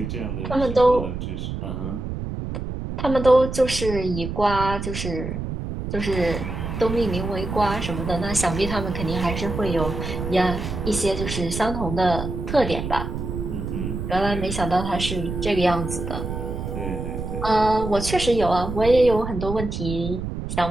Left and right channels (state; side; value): noise; right; rumble, 5 dB below the sound